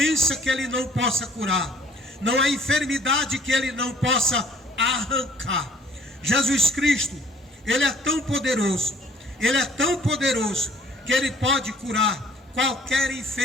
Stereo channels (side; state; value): both; normal; correlation 0.57